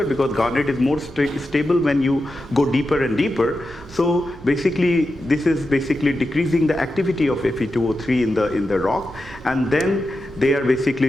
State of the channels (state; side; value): normal; both; correlation 0.90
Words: because garnet is more stable when you go deeper and deeper, so basically this is basically decreasing the activity of Fe203 in the rock, and then they are